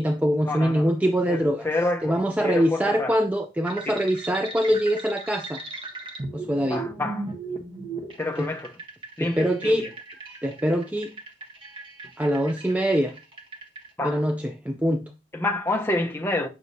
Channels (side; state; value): both; normal; correlation 0.83